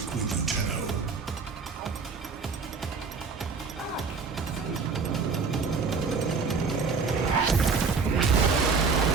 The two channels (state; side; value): quieter; left; 4.9 dB